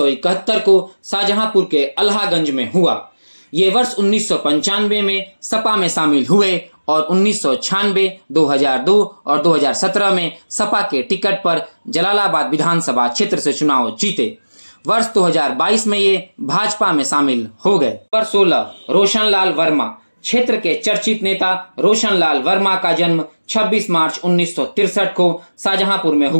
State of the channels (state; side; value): inverted; both; correlation -1.00